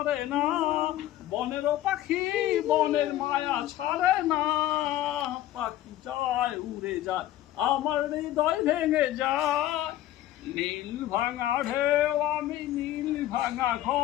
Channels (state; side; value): quieter; right; 13.7 dB